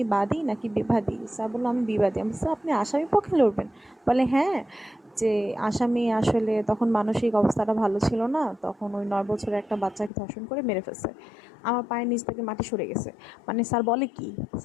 বাদী নাকি বিবাদী? স্যার বললো আমি বিবাদী। আমি স্যার আপনি আসামি পক্ষে লড়বেন? বলে হ্যাঁ, যে আসামি আসলে তখন মানসিক অবস্থাটা ভালো ছিল না, তখন ওই 9 বছরের একটা বাচ্চাকে ধর্ষণ করে মেরে ফেলছে। আমার পায়ের নিচ থেকে মাটি সরে গেছে। মানে স্যার বলে কি,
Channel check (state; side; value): drops out; right; at 10.1 s